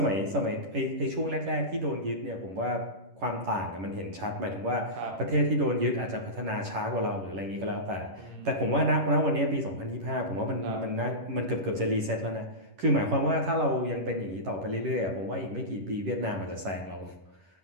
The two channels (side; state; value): left; late; 11 ms